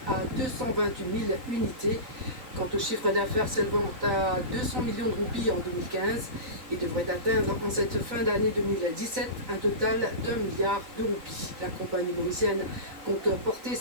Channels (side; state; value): left; late; 3.9 ms